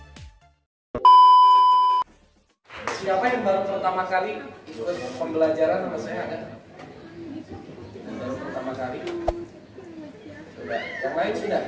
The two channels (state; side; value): identical; both; correlation 1.00